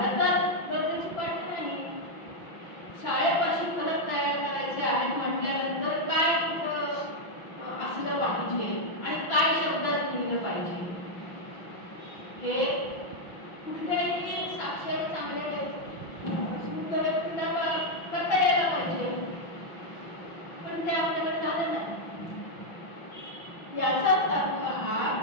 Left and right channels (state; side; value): late; right; 6.1 ms